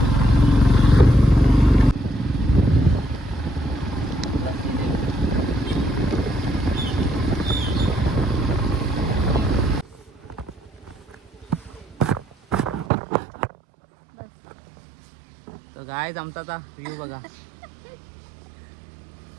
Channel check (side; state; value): left; drops out; at 12.9 s